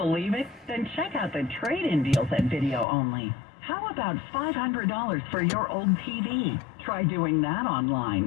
it? Then check out the trade-in deals at Video Only. How about $500 for your old TV? Try doing that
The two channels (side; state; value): right; drops out; at 2.9 s